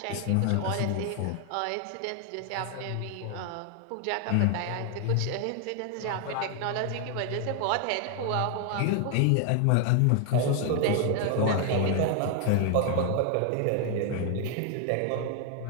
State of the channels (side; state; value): both; different; correlation 0.00